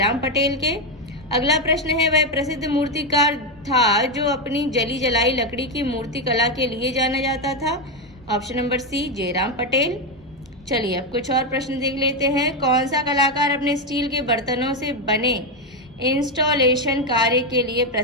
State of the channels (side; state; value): both; normal; correlation 0.07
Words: पटेल के। अगला प्रश्न है, वह प्रसिद्ध मूर्तिकार था जो अपनी जली जलाई लकड़ी की मूर्ति कला के लिए जाना जाता था? Option number C, Jairam Patel. चलिए अब कुछ और प्रश्न देख लेते हैं। कौन सा कलाकार अपने स्टील के बर्तनों से बने इंस्टॉलेशन कार्य के लिए